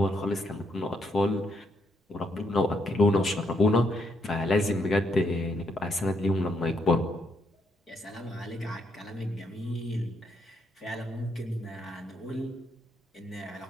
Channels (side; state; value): both; normal; correlation 0.76